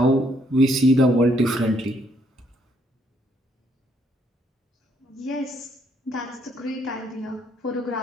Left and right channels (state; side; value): normal; both; correlation 0.70